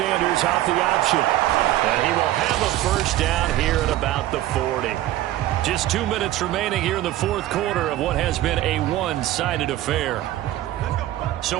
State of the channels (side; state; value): left; quieter; 14.6 dB